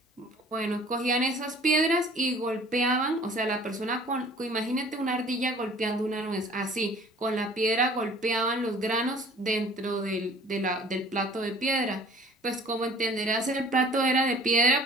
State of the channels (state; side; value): normal; both; correlation 0.50